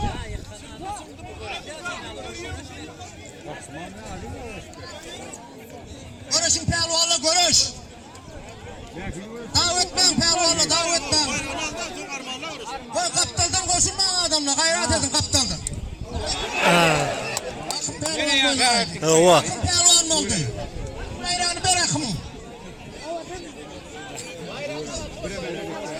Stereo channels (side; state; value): both; identical; correlation 1.00